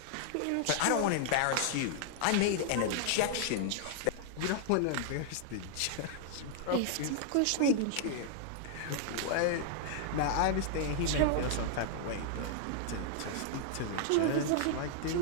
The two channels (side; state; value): both; different; correlation 0.00